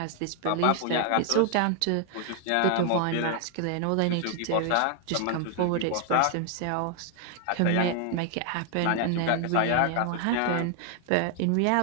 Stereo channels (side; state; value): both; different; correlation 0.00